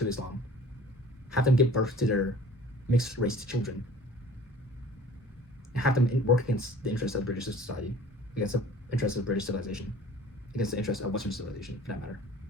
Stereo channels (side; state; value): both; normal; correlation 0.47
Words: Islam, have them give birth to their mixed race children, and have them work against the interests of British society, against the interests of British civilization, against the interests of Western civilization, for that matter.